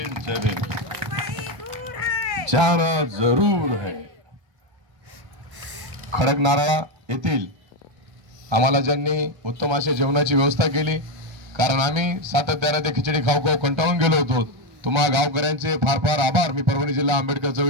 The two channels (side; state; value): left; late; 1.3 ms